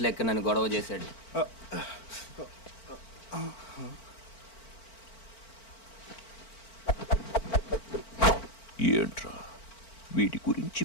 నన్ను గొడవ చేశాడు. ఏంట్రా వీడి గురించి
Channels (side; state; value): right; late; 4.4 ms